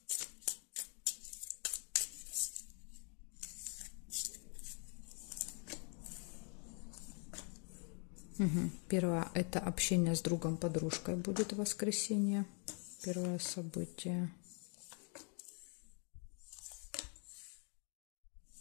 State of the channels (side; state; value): right; quieter; 39.6 dB